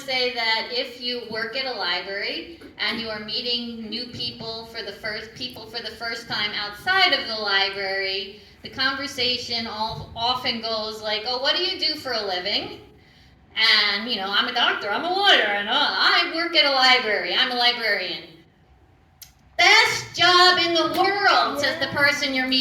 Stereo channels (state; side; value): identical; both; correlation 1.00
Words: that if you work at a library and you are meeting new people for the first time outside of the library, the conversation often goes like, oh, what do you do for a living? And, I'm a doctor, I'm a lawyer, and I work at a library, I'm a librarian. Best job in the world, says the person you're